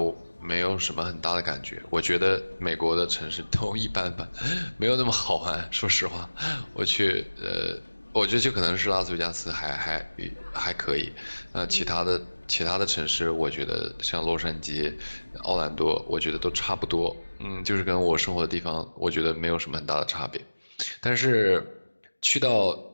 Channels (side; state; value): both; inverted; correlation -1.00